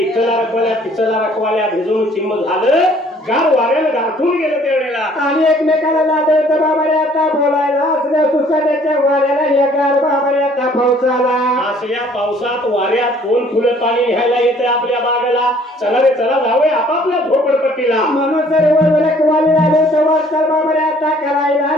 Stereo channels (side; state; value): both; normal; correlation 0.58